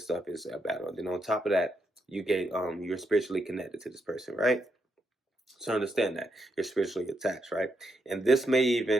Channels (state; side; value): normal; both; correlation 0.80